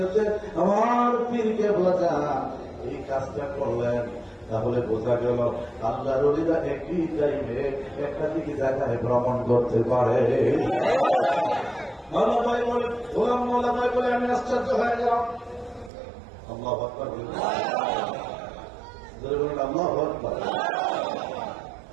আমার পীরকে বোঝা এই কাজটা করলেন। তাহলে বোঝা গেল আল্লাহর ওলিরা একই টাইমে একাধিক জায়গায় ভ্রমণ করতে পারে। মাওলা ভাই বলে, গোলাম মাওলা ভাই বলে, আমি আশ্চর্য হয়ে গেলাম। আল্লাহু আকবার, আল্লাহু আকবার।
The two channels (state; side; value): drops out; left; at 15.9 s